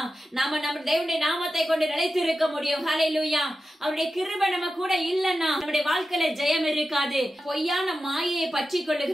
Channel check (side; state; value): both; normal; correlation 0.92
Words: நாம நம்ம தேவனுடைய நாமத்தை கொண்டு நிலைத்து இருக்க முடியும். ஹல்லேலூயா. அவருடைய கிருபை நம்ம கூட இல்லன்னா நம்முடைய வாழ்க்கையில ஜெயம் இருக்காது. பொய்யான மாயையை பற்றி